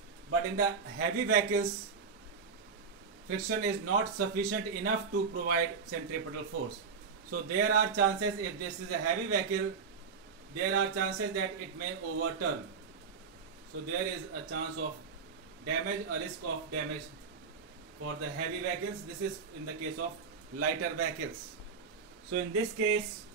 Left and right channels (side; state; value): left; quieter; 5.5 dB